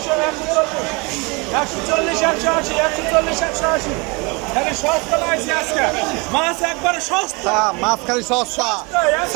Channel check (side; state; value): left; quieter; 28.3 dB